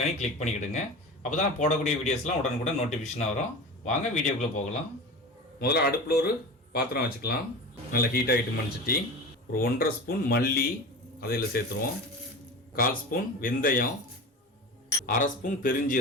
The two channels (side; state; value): both; normal; correlation 0.31